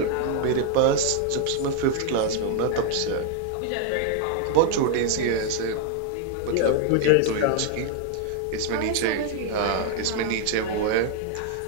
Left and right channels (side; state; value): both; different; correlation 0.00